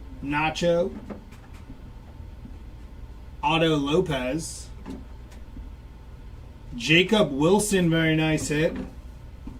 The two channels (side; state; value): both; identical; correlation 1.00